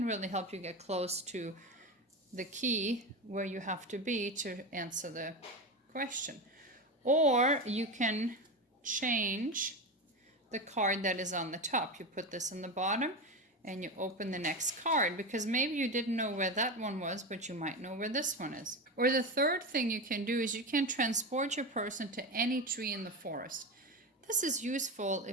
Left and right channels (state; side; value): normal; both; correlation 0.20